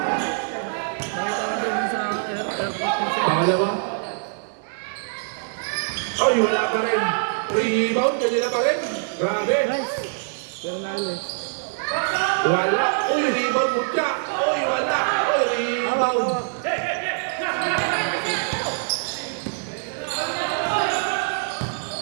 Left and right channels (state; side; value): silent; left; digital silence